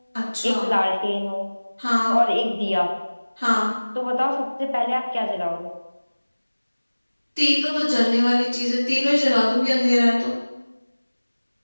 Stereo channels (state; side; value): inverted; both; correlation -1.00